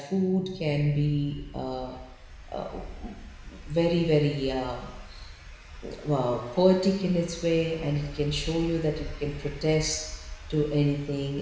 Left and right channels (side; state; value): both; identical; correlation 1.00